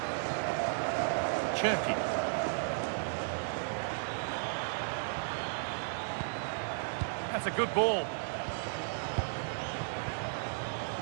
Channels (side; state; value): left; silent; digital silence